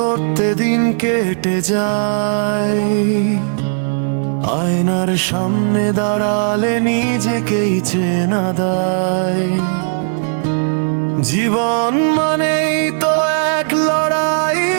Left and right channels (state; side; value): silent; left; 55 dB below the other